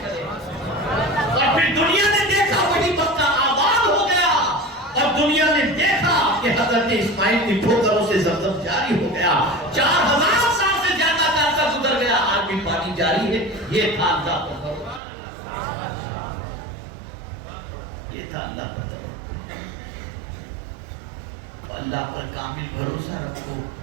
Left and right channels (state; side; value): drops out; left; at 15.0 s